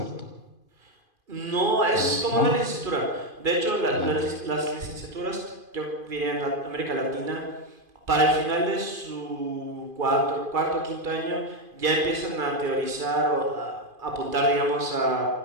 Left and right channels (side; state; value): left; late; 2.5 ms